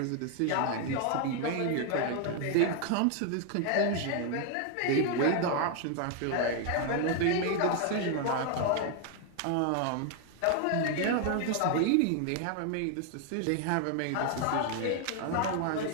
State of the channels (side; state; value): both; different; correlation 0.00